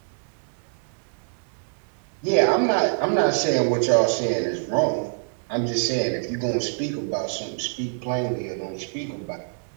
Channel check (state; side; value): silent; left; digital silence